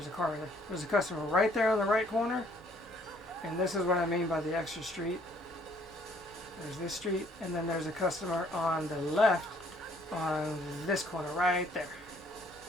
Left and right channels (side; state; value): both; normal; correlation 0.63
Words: a car there. There's a customer right there on the right corner, and this is what I mean by the extra street. There's this street, and then there's a customer on the left on this corner right there.